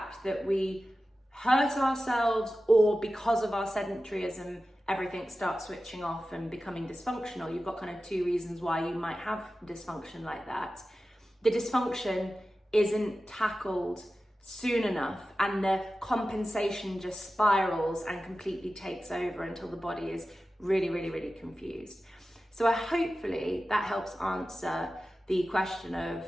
that we hurt ourselves, or because of our sedentaryism, everything starts switching off and becoming dysfunctional. You've got kind of two reasons why you might have dysfunction like that. The dysfunction isn't tackled soon enough and the compensation just spirals and completely takes over until the body is really, really, really confused. So hopefully that helps answer the question of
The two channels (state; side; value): normal; both; correlation 0.94